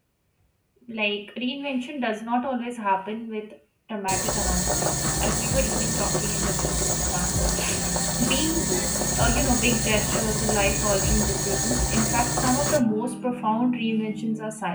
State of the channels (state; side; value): identical; both; correlation 1.00